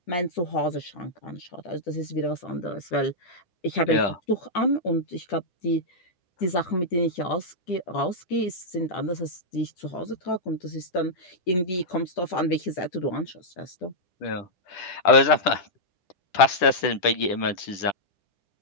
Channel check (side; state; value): right; late; 10 ms